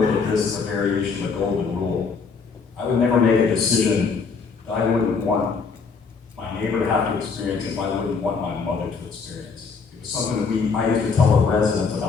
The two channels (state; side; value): quieter; right; 5.1 dB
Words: at this as a variation of the golden rule. I would never make a decision that I wouldn't want my neighbor to have to experience if I wouldn't want my mother to experience. It was something that I used to tell the residents